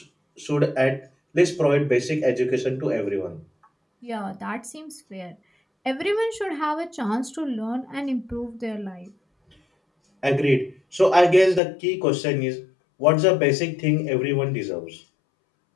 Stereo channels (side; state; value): right; drops out; at 11.6 s